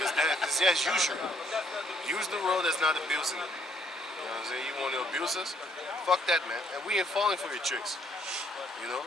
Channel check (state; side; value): normal; both; correlation 0.67